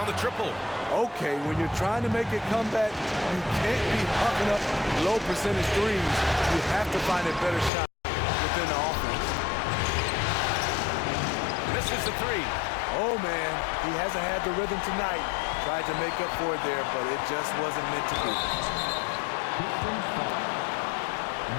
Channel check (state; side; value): drops out; right; at 7.7 s